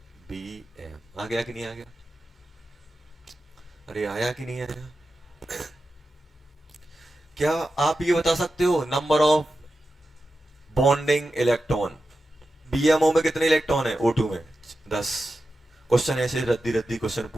BM। आ गया कि नहीं आ गया, अरे आया कि नहीं आया। क्या आप ये बता सकते हो number of bonding electron, BMO में कितने इलेक्ट्रॉन है O2 में 10। क्वेश्चन ऐसे रद्दी रद्दी क्वेश्चन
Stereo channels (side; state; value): both; normal; correlation 0.92